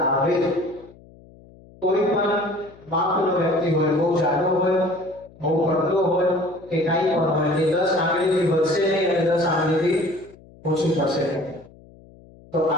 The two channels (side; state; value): left; noise; hum, 24 dB below the sound